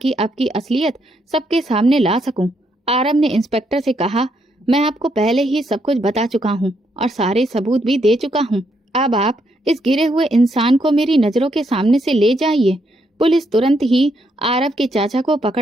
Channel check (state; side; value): normal; both; correlation 0.76